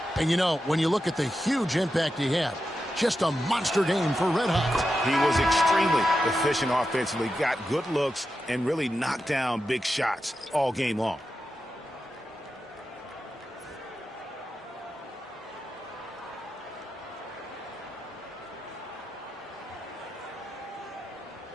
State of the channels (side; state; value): both; normal; correlation 0.89